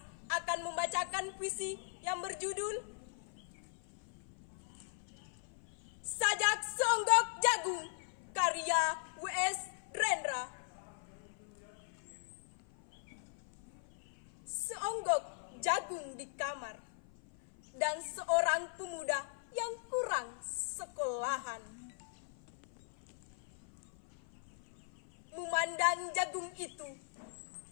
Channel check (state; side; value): silent; right; 52 dB below the other